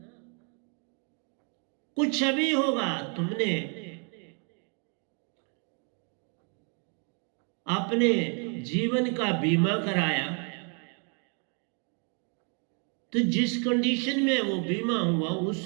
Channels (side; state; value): left; quieter; 39.0 dB